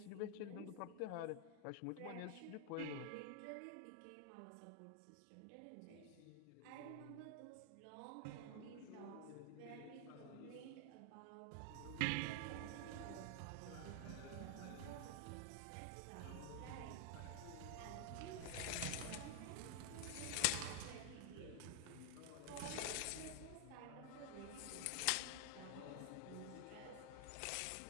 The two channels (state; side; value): different; both; correlation 0.00